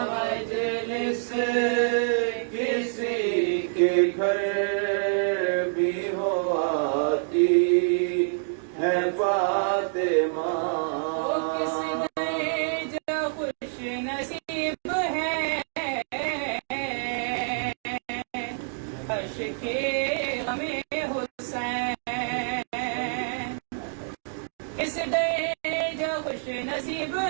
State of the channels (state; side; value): silent; left; digital silence